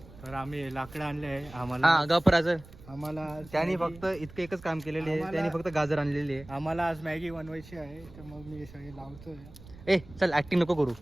तर आम्ही लाकडं आणले आहे आम्हाला. हा गपराचं आम्हाला त्यांनी फक्त इतकं एकच काम केलेलं आहे, त्यांनी फक्त गाजर आणलेली आहे. आम्हाला आज मॅगी बनवायची आहे, तर मग मी सगळे लावतोय. ए चल ऍक्टिंग नको करू.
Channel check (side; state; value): right; noise; rumble, 19 dB below the sound